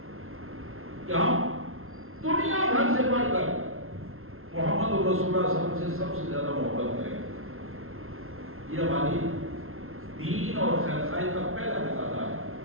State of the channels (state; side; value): late; left; 0.62 ms